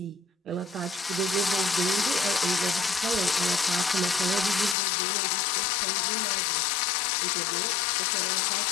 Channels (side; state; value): right; drops out; at 4.8 s